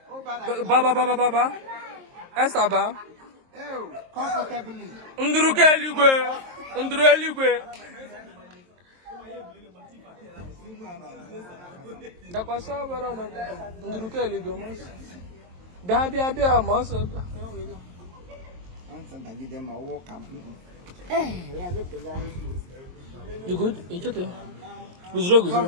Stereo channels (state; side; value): late; left; 23 ms